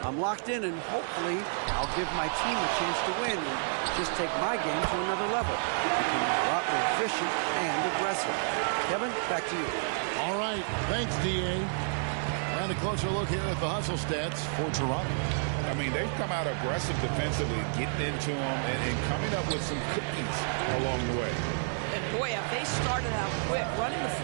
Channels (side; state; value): left; silent; digital silence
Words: I'm locked in and hopefully I'll give my team a chance to win and just take my game to another level. Becoming a lot more efficient and aggressive. Kevin, back to you. All right. Thanks, D.A. And a closer look here at the hustle stats for Toronto. I mean, they've come out aggressive defensively, getting into them and coming up with some cookies along the way. And boy, have they started out quick, running the